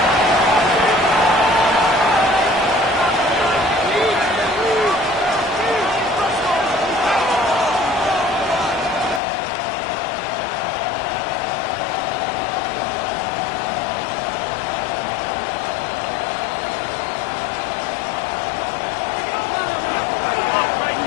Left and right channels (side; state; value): right; drops out; at 9.2 s